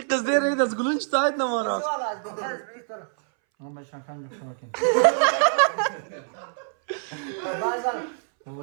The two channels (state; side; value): silent; left; 62 dB below the other